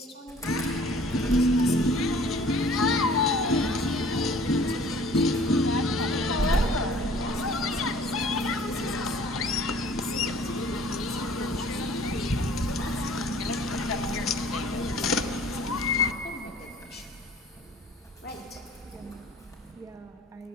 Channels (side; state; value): both; normal; correlation 0.51